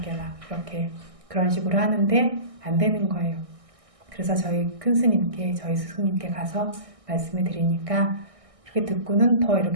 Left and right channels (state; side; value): late; left; 1.6 ms